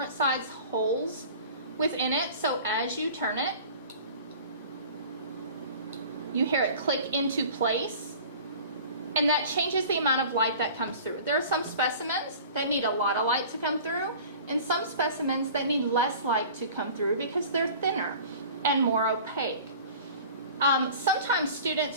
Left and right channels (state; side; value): inverted; both; correlation -0.43